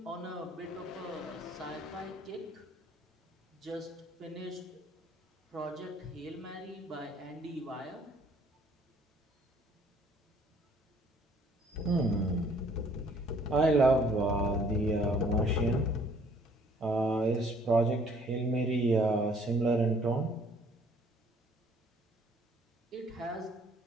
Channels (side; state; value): both; normal; correlation 0.59